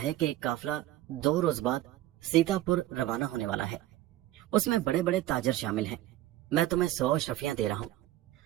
कि एक काफिला 2 रोज बाद सीतापुर रवाना होने वाला है। उसमें बड़े बड़े ताजर शामिल हैं। मैं तुम्हें 100 अशरफियां दे रहा हूँ।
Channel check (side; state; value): left; quieter; 14.7 dB